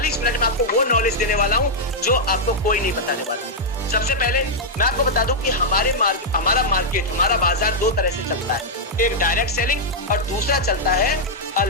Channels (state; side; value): normal; both; correlation -0.05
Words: मिनट में आपको वो नॉलेज देने वाला हूं जो आपको कोई नहीं बताने वाला। सबसे पहले मैं आपको बता दूं कि हमारा मार्केट, हमारा बाजार दो तरह से चलता है। एक डायरेक्ट सेलिंग और दूसरा चलता है